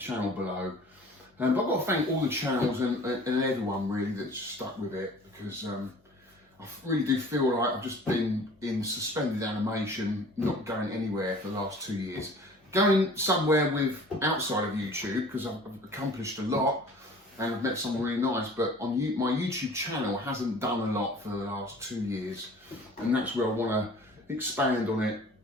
below. But I've got to thank all the channels and everyone really that's stuck with it, because I really do feel like I've just been in suspended animation, not going anywhere for the last 2 years. Going somewhere with outside of YouTube, because I've accomplished a lot and I've met someone really nice, but on my YouTube channel hasn't done a lot for the last 2 years, and that's where I want to expand on it,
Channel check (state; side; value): normal; both; correlation 0.47